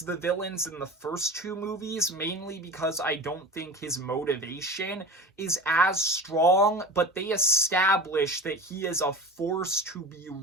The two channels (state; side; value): normal; both; correlation 0.33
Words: villains in the first two movies, mainly because I don't think his motivation is as strong, but they establish that he is a force to be